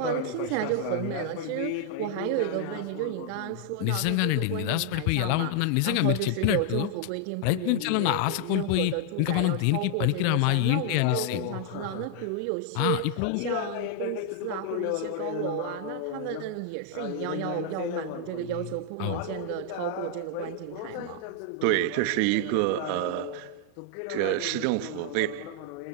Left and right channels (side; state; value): both; different; correlation 0.00